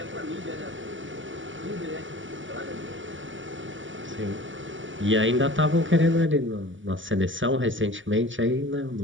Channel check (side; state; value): left; late; 0.56 ms